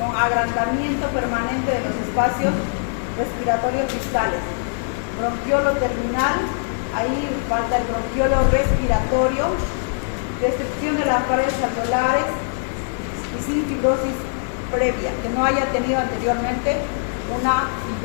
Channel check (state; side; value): silent; right; digital silence